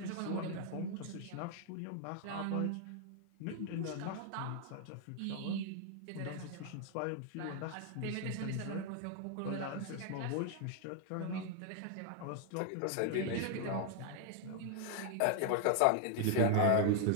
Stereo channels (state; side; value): different; both; correlation 0.00